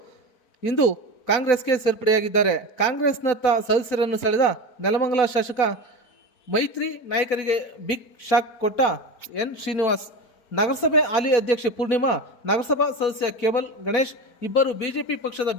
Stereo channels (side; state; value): right; late; 4.4 ms